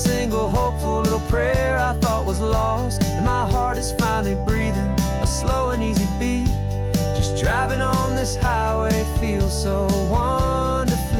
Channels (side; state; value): both; identical; correlation 1.00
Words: hopeful little prayer I thought was lost, and my heart is finally breathing a slow and easy beat. Just driving on this highway feels so